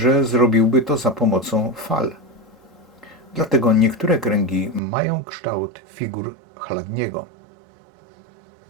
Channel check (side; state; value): left; drops out; at 4.8 s